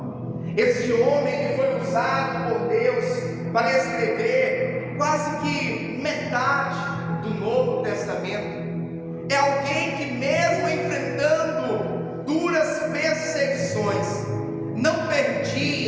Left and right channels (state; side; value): identical; both; correlation 1.00